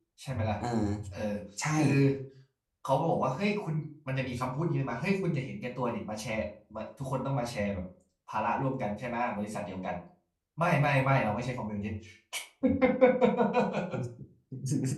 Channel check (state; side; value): identical; both; correlation 1.00